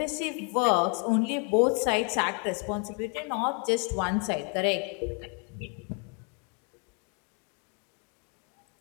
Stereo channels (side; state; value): right; quieter; 37.6 dB